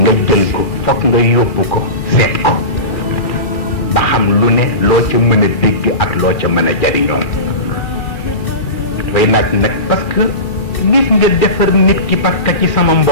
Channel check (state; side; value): late; right; 2.6 ms